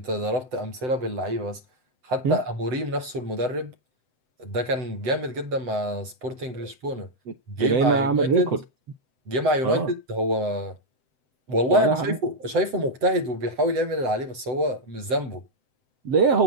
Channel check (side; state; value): left; late; 7.8 ms